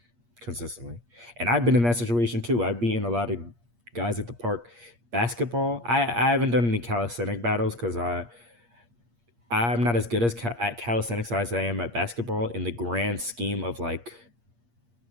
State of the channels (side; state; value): left; late; 8.5 ms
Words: consistently. And I've been in that situation too. I've beaten a lot of guys at the park. Basketball, I haven't done any calisthenic battles because I'm not as good as at calisthenics as I am at basketball in the grand scheme of like